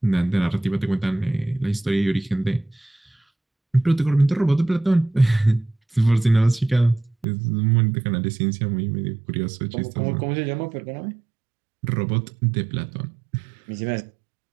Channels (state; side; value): drops out; left; at 7.2 s